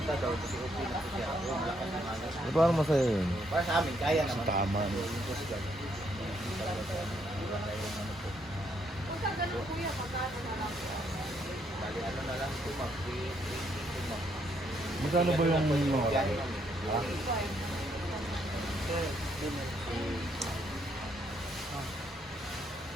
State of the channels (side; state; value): both; normal; correlation 0.73